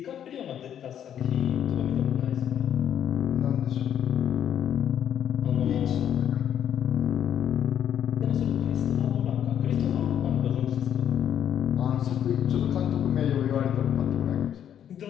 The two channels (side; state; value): right; quieter; 9.7 dB